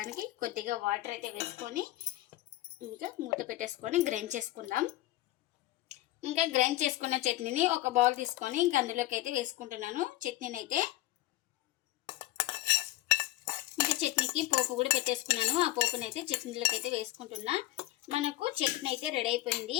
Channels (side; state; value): right; quieter; 16.6 dB